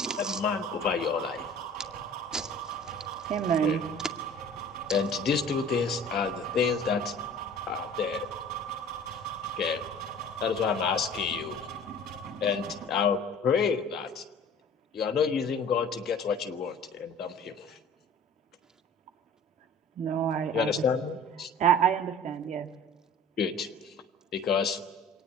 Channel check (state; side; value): normal; both; correlation 0.45